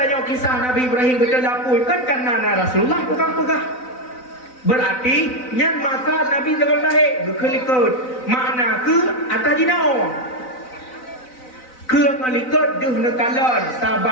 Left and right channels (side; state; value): right; late; 4.0 ms